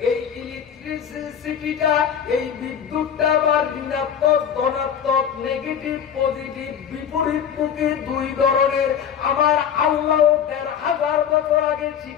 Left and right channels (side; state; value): right; quieter; 8.3 dB